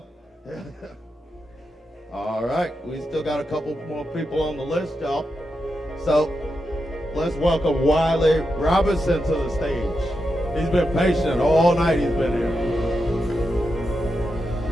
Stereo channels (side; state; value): both; normal; correlation 0.87